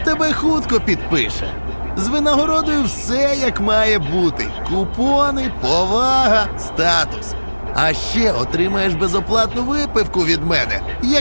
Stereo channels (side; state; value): both; inverted; correlation -1.00